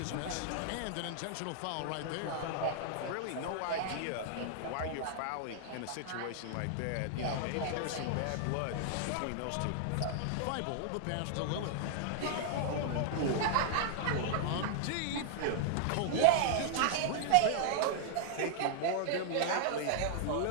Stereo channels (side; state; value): both; different; correlation 0.00